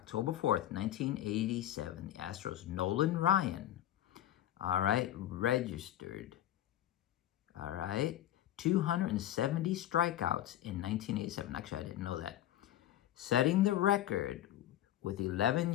4th, 1987. The Astros, Nolan Ryan. All right, registered. All right, 270 strikeouts in 1987. Actually, I didn't know that. Setting the record with 11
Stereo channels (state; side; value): quieter; right; 12.7 dB